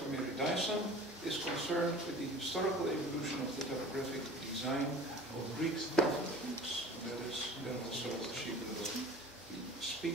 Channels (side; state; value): both; normal; correlation 0.42